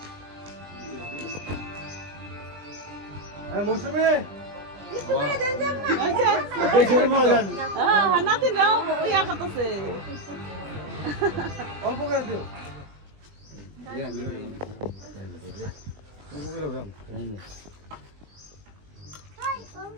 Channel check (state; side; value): late; left; 20 ms